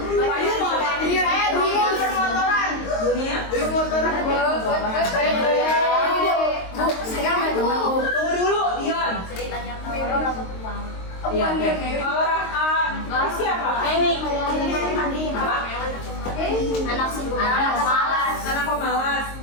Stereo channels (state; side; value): late; right; 22 ms